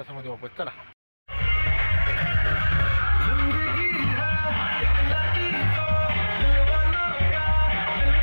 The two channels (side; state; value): both; inverted; correlation -1.00